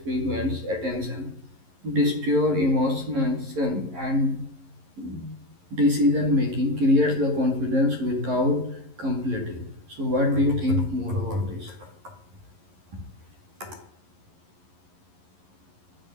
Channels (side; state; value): left; late; 11 ms